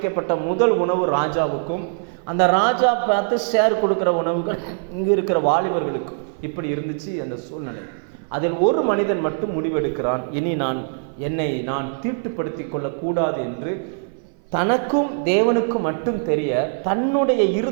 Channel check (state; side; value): silent; left; 57 dB below the other